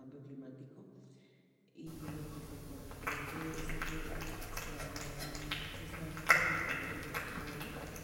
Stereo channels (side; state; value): both; identical; correlation 1.00